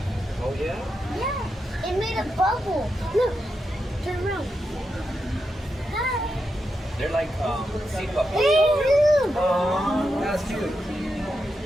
Oh, yeah? yeah, it made a bubble. Look, turn around. Hi. They're like, sea puppets. Hey, look. Oh, that's cute.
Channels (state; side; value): normal; both; correlation 0.86